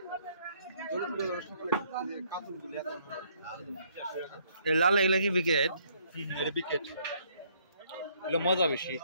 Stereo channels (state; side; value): inverted; both; correlation -0.66